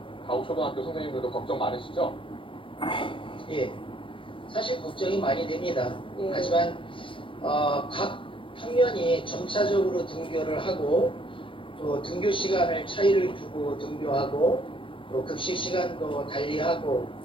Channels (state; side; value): late; right; 0.25 ms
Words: 가옥초등학교 선생님들도 걱정 많으시죠? 예, 사실 걱정이 많이 됩니다. 네. 하지만 각 학년이 점차적으로 등교를 하고 또 등교 시간을 차이를 두고 등교하고 또 급식 시간도 달리하고